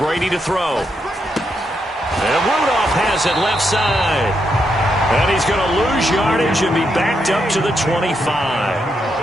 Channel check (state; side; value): normal; both; correlation 0.81